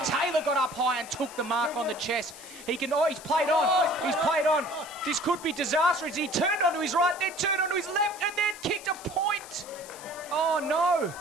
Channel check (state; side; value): noise; left; hiss, 16 dB below the sound